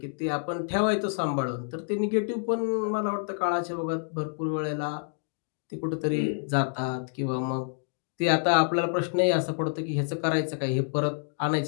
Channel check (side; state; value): right; silent; digital silence